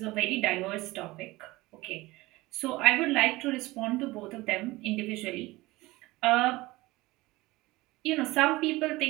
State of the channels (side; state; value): left; quieter; 20.2 dB